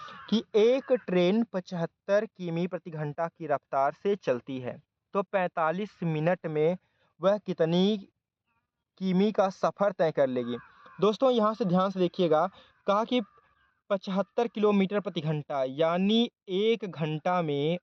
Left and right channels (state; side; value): identical; both; correlation 1.00